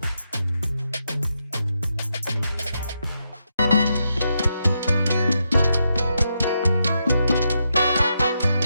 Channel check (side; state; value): both; inverted; correlation -0.83